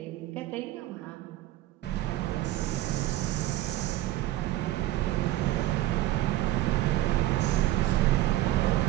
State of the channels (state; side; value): quieter; left; 15.0 dB